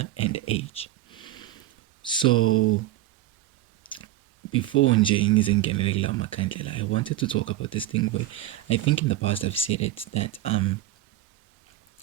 and age. So before I wanted to talk about this thing where I think in the past I've said it, that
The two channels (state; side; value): quieter; left; 14.5 dB